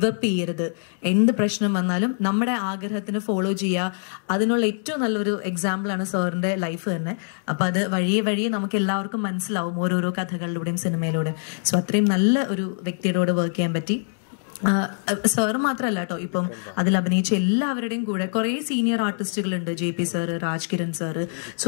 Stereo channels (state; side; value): silent; right; digital silence